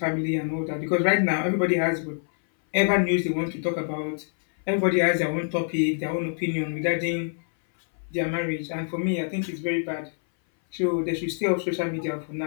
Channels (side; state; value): right; silent; 60 dB below the other